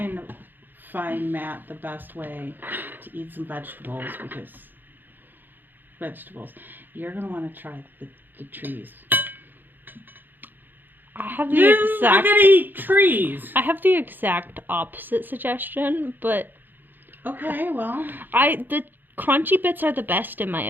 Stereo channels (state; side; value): late; left; 0.091 ms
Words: to find Matt the best way to eat some vegetables because you're going to want to try the trees. I have the I'm exact... gonna eat trees. I have the exact opposite suggestion, but... Okay, well... The crunchy bits are the best in my